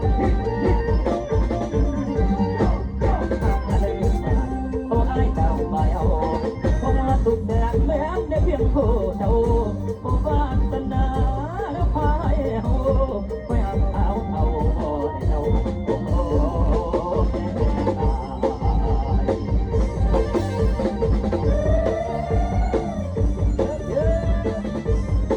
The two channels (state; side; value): identical; both; correlation 1.00